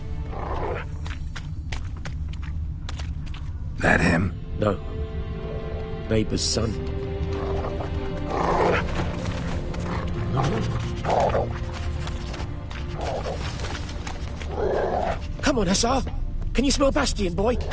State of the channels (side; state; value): both; identical; correlation 1.00